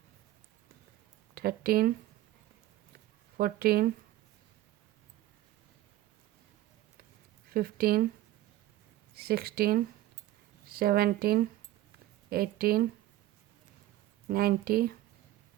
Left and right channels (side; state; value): left; quieter; 15.1 dB